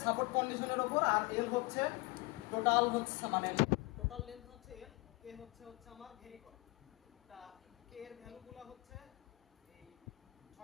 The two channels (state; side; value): quieter; right; 23.5 dB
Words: সাপোর্ট কন্ডিশনের ওপর, আর এল হচ্ছে টোটাল হচ্ছে মানে টোটাল লেন্থ হচ্ছে এল, কে হচ্ছে আমার ভ্যারি করে। তা কে এর ভ্যালুগুলো হচ্ছে এই